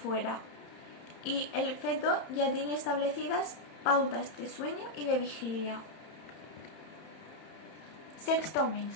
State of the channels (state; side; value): late; right; 30 ms